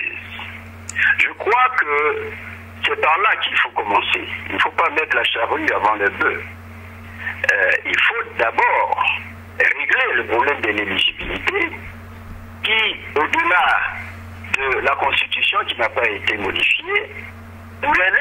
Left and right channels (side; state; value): both; identical; correlation 1.00